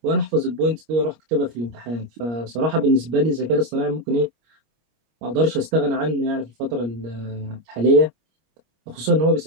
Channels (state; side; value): late; left; 25 ms